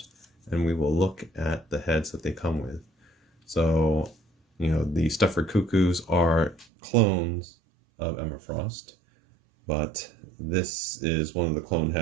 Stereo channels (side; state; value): left; drops out; at 6.7 s